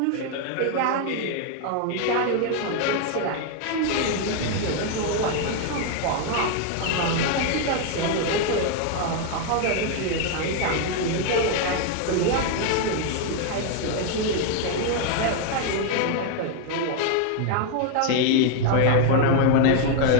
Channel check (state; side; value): different; both; correlation 0.01